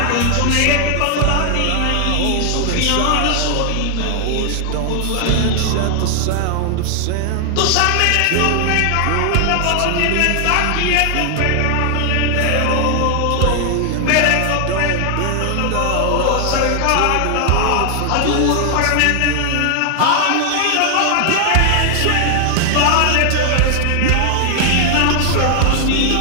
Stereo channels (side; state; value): both; different; correlation 0.00